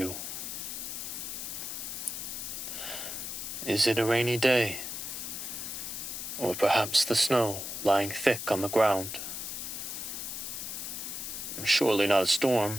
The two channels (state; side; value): noise; left; hiss, 5 dB below the sound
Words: Is it a rainy day? Or perhaps the snow lying thick on the ground? Surely not a